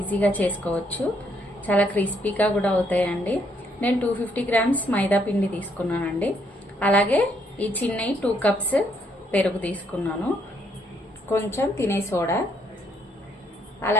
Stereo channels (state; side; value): normal; both; correlation 0.71